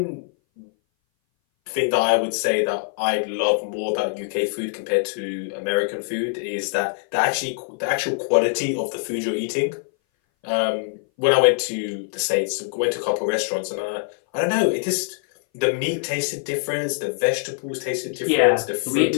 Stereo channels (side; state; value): right; silent; 59 dB below the other